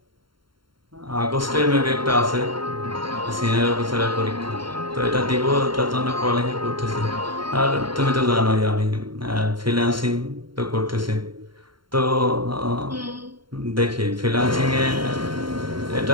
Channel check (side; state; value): left; late; 0.73 ms